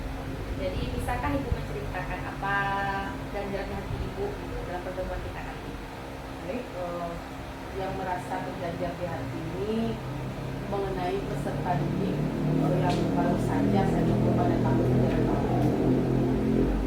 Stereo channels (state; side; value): identical; both; correlation 1.00